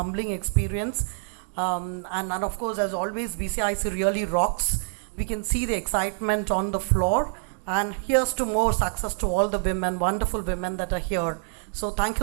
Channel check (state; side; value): silent; left; digital silence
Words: experience. And of course, as always, BCIC really rocks. We can see the excitement on the floor. And here's to more success to all the women, wonderful women that are here. So thank